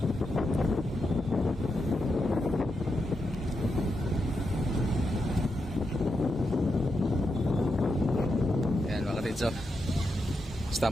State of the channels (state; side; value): normal; both; correlation 0.85